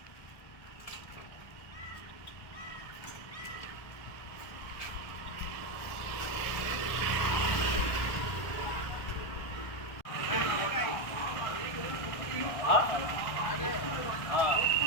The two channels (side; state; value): right; late; 1.4 ms